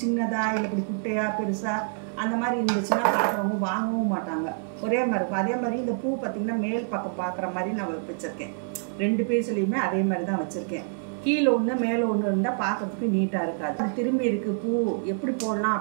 சின்னதாக இல்லை இப்படி குட்டையாக பெருசாக அந்த மாதிரி இருந்துச்சுன்னா பார்க்குறவங்க வாங்கவும் மாட்டாங்க. ஒரே மாதிரி இருக்கும். அதே மாதிரி இந்த பூ பார்த்திங்கன்னா மேல் பக்கம் பார்க்குற மாதிரி நான் வச்சுருக்கேன். 2 பீஸ்லேயுமே அதே மாதிரி தான் வச்சுருக்கேன். கீழே ஒன்று மேலே ஒன்று இருந்தால் பார்க்குறதுக்கு நீட்டாக இருக்காது. அது திரும்பி இருக்குது பூ எப்படி போடலாம்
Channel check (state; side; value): silent; left; 60 dB below the other